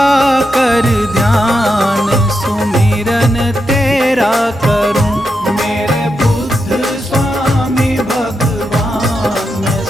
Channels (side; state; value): both; normal; correlation 0.85